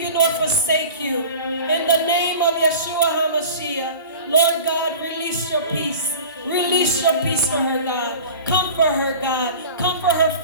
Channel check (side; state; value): both; inverted; correlation -0.38